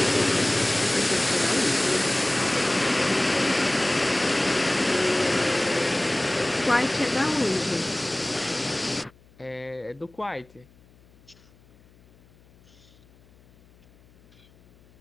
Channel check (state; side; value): noise; left; hum, 29 dB below the sound